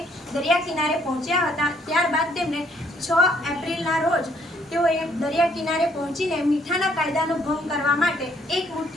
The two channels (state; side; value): normal; both; correlation 0.66